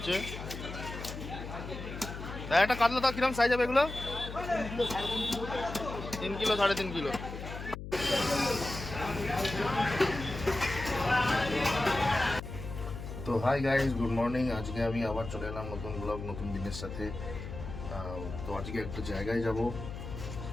একটা কাতলা দাও, কিরম সাইজ হবে এগুলো? 3 কিলো 3.5 কিলো। তো হাই গাইজ, গুড মর্নিং। আজকে আমি আবার চলে এলাম নতুন ব্লগ, নতুন দিনের সাথে। তো আজকে একটা জায়গায় যাব,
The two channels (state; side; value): noise; left; hum, 9 dB below the sound